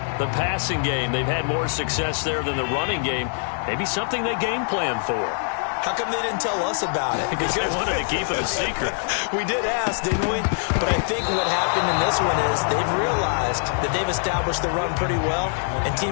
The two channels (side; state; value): right; silent; 63 dB below the other